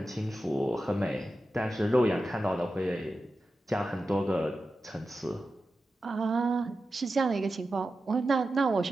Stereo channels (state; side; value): normal; both; correlation 0.92